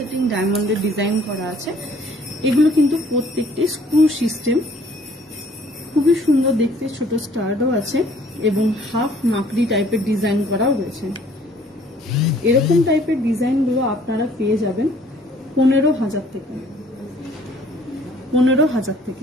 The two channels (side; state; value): both; normal; correlation 0.57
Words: ডায়মন্ডের ডিজাইন করা আছে। এগুলো কিন্তু প্রত্যেকটি স্ক্রু সিস্টেম, খুবই সুন্দর দেখতে, ছোট স্টারও আছে এবং হাফ মাকড়ি টাইপের ডিজাইন করাও রয়েছে। এরকম টাইপের ডিজাইনগুলো আপনারা পেয়ে যাবেন 15,000 থেকে। 15,000